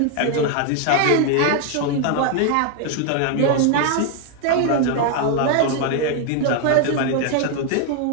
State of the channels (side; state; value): both; different; correlation 0.00